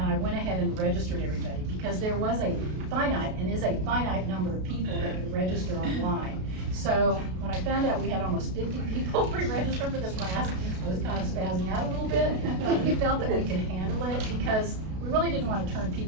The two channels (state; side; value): late; left; 32 ms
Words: I went ahead and registered everybody, because there was a finite, and is a finite number of people that could register online. So when I found out we had almost 50 people pre-registered for this class, I was kind of spazzing out a little bit, but we felt that we could handle it, because we really didn't want to turn